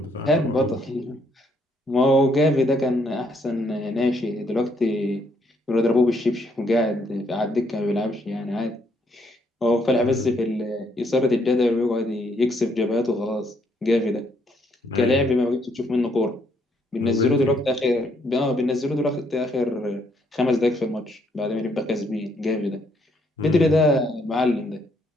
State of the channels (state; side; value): normal; both; correlation 0.71